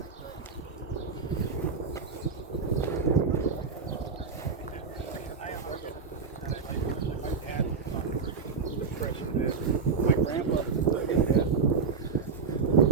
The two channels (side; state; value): left; quieter; 5.1 dB